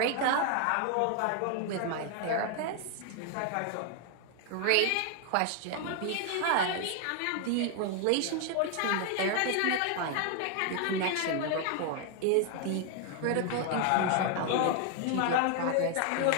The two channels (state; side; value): different; both; correlation 0.00